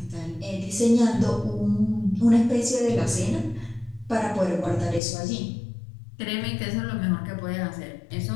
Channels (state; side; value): drops out; right; at 5.0 s